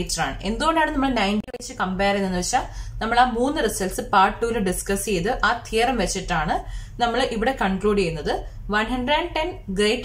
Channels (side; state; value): both; identical; correlation 1.00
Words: ആണ്. എന്തുകൊണ്ടാണ് നമ്മൾ 90 വെച്ച് കമ്പയർ ചെയ്യുന്നതെന്ന് വെച്ചാൽ, നമ്മൾ ആ 3 റിസൾട്ട്സ് പാർട്ട് 2-ൽ ഡിസ്കസ് ചെയ്ത് ആ തിയറം വെച്ചിട്ടാണ് നമ്മൾ ഇവിടെ കൺക്ലൂഡ് ചെയ്യുന്നത്. 110